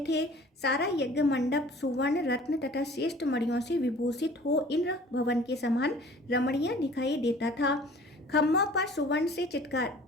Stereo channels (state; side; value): normal; both; correlation 0.48